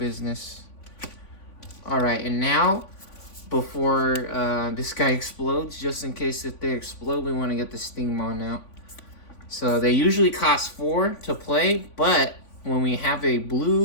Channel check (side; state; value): right; late; 3.5 ms